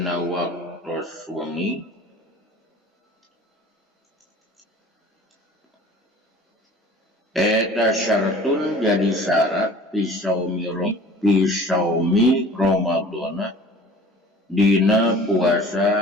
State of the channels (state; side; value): normal; both; correlation 0.46